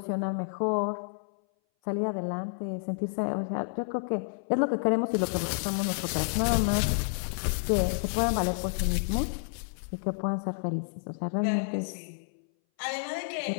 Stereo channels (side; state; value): right; silent; 58 dB below the other